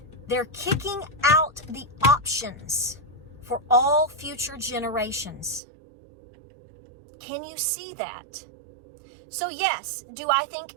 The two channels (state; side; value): drops out; left; at 5.6 s